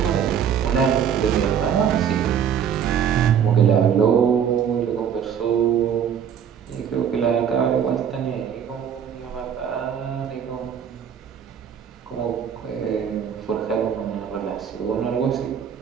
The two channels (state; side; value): quieter; left; 8.2 dB